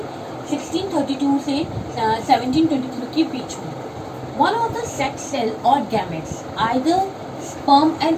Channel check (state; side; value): identical; both; correlation 1.00